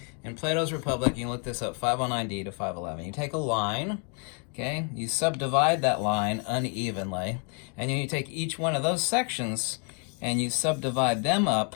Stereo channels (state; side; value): quieter; right; 38.8 dB